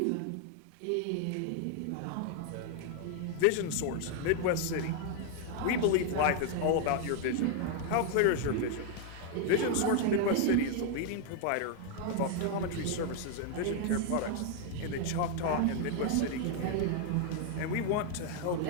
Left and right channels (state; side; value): different; both; correlation 0.00